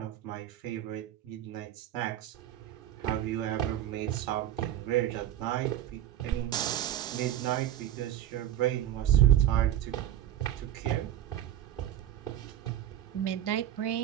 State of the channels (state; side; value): quieter; left; 11.8 dB